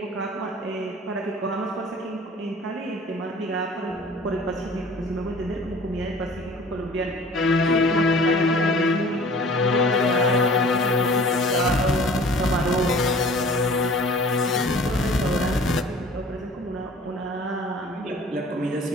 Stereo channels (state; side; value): normal; both; correlation 0.47